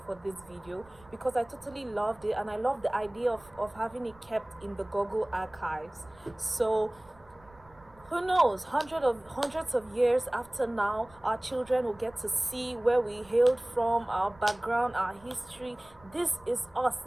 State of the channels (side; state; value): right; noise; rumble, 26 dB below the sound